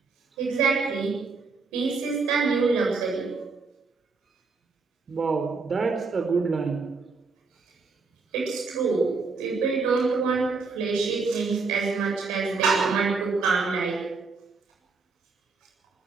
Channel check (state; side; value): quieter; left; 4.3 dB